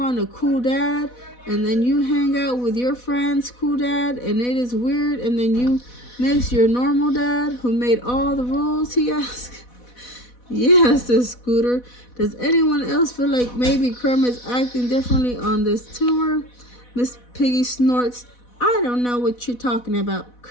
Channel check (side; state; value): right; late; 4.1 ms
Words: a cool dad, and then you hang out with your friend's cool dad, and it is weird, and then you miss your normal dad who made all the rules, he asks. Yeah, says Scooter. Does anyone else feel like maybe Kermit's acting differently on this tour? Miss Piggy snorts. I don't know what you're talking about.